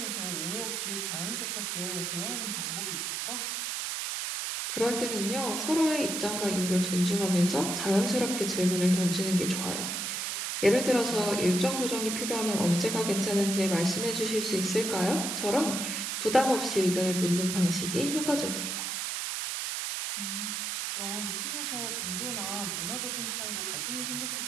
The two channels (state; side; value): noise; right; hiss, 2 dB below the sound